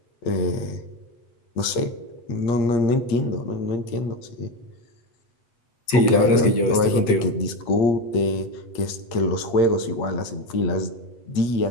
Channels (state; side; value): late; right; 8.2 ms